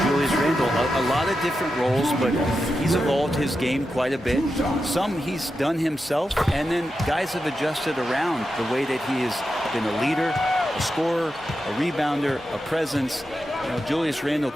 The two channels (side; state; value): both; normal; correlation 0.89